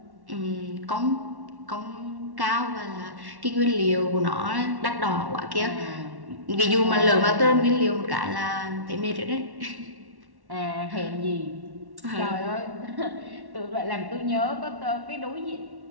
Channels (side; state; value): left; late; 1.1 ms